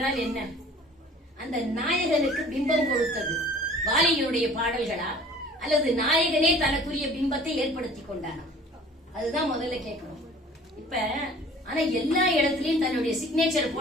என்ன? அந்த நாயகனுக்கு பிம்பம் கொடுத்தது வாலியினுடைய பாடல்களா, அல்லது நாயகனே தனக்குரிய பிம்பத்தை ஏற்படுத்தி கொண்டானா? அதுதான் முதல்ல கேட்கணும். இப்ப ஆனா எல்லா இடத்துலயும் தன்னுடைய சிக்னேச்சர்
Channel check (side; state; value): both; normal; correlation 0.49